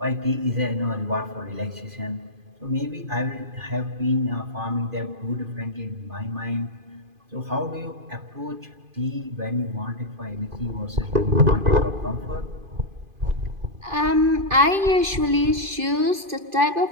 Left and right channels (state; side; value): late; left; 2.5 ms